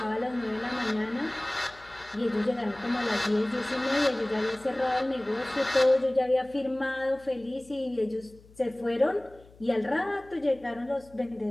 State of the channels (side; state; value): left; noise; hum, 25 dB below the sound